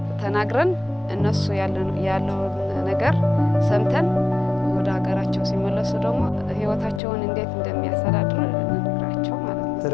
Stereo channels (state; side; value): drops out; right; at 7.0 s